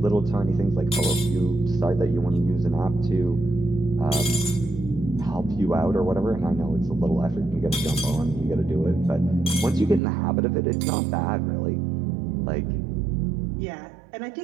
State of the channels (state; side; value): drops out; left; at 10.0 s